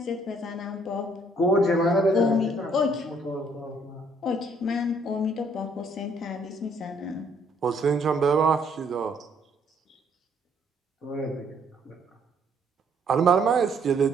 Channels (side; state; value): both; normal; correlation 0.65